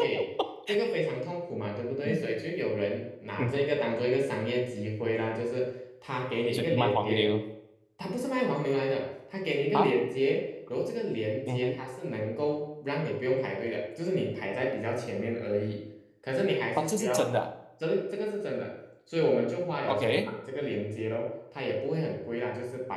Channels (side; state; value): both; identical; correlation 1.00